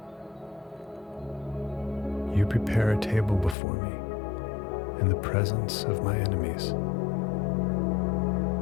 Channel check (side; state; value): right; drops out; at 3.6 s